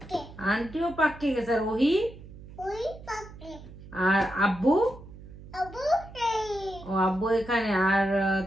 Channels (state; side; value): noise; right; hum, 17 dB below the sound